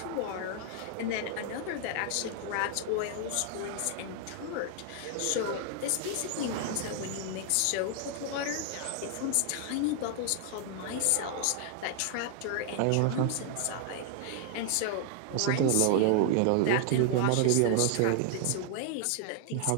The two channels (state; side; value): different; both; correlation 0.00